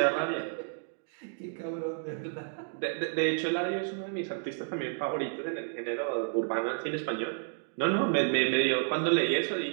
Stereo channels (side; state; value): left; silent; digital silence